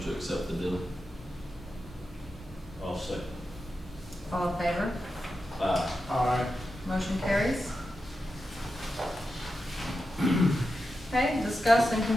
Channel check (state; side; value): normal; both; correlation 0.89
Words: to accept the bid. I'll second. All in favor? Aye. Motion carries. Okay, discuss and